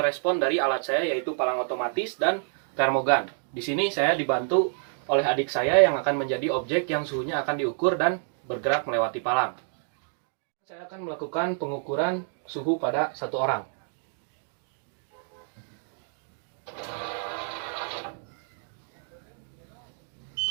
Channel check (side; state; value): left; silent; 59 dB below the other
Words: dari alat saya yaitu palang otomatis dan termogan. Di sini saya dibantu oleh adik saya yang akan menjadi objek yang suhunya akan diukur dan bergerak melewati palang. Saya akan melakukan pengukuran suhu pada satu orang.